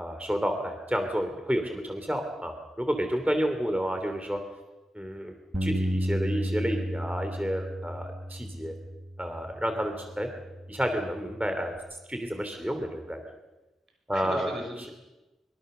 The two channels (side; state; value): both; normal; correlation 0.92